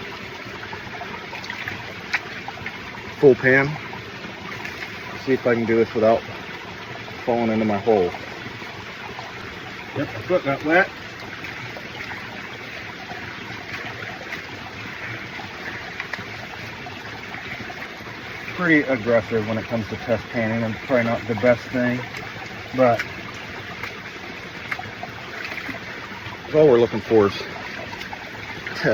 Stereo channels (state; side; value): identical; both; correlation 1.00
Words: Full pan. See if I can do this without falling into my hole. Yep, my foot got wet. Pretty aggressive when it comes to test panning, and probably not the best thing, but all we're looking for is